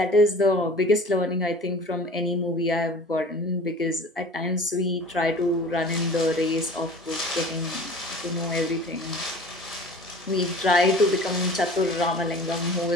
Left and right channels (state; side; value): normal; both; correlation 0.43